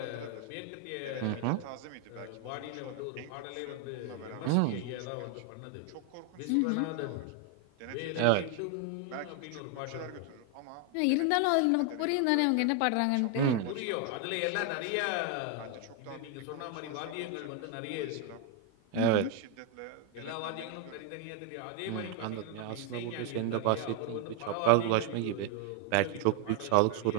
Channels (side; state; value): both; different; correlation 0.01